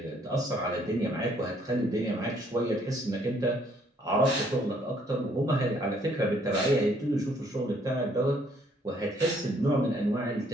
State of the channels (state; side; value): normal; both; correlation 0.65